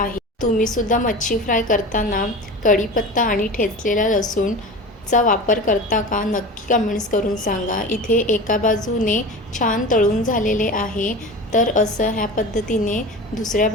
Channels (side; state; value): both; normal; correlation 0.32